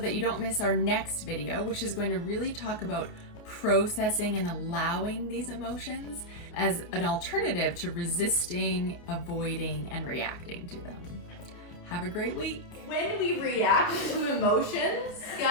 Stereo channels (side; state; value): right; late; 29 ms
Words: you don't miss our next video, which is going to really talk about processing and allowing these emotions as an alternative to resisting, avoiding, and reacting to them. Have have a great week. When we react to emotions,